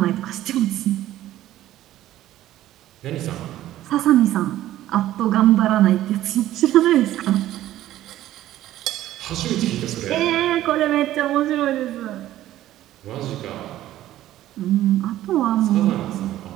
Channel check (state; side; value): quieter; left; 13.8 dB